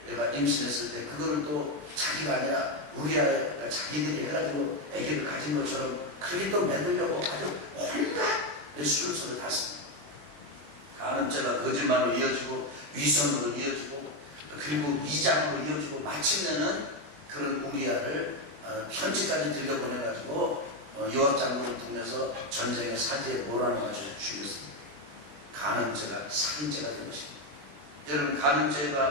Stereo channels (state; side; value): late; left; 21 ms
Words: 임신했을 때 그거를 또 자기가 아니라 우리아가 자기들이 해가지고 아기를 가진 것처럼 그렇게 또 만들려고 아주 온갖 술수를 탔습니다. 간음죄가 거짓말로 이어지고, 위선으로 이어지고, 그리고 위장으로 이어지고, 마침내는 그런 우리아를 편지까지 들려보내가지고 요압 장군을 통해서 전쟁의 사지에 몰아넣어가지고 죽였습니다. 간음죄가 살인죄가 된 것입니다. 여러분,